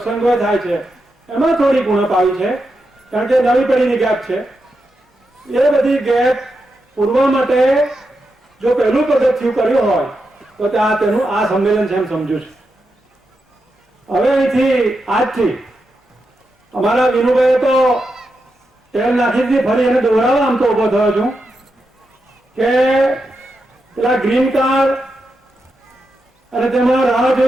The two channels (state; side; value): normal; both; correlation 0.86